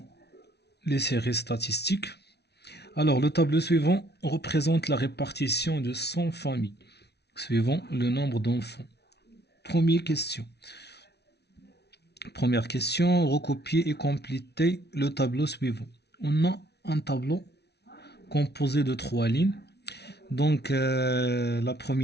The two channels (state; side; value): late; right; 0.49 ms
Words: les séries statistiques. Alors le tableau suivant représente la répartition de 100 familles suivant le nombre d'enfants. Première question, recopier et compléter le tableau suivant. On a un tableau composé de 3 lignes. Donc la